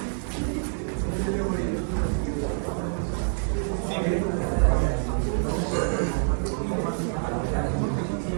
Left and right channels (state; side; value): silent; left; 60 dB below the other